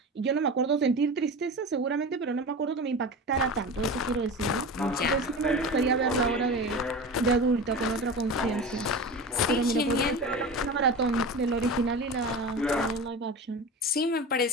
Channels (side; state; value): both; normal; correlation 0.30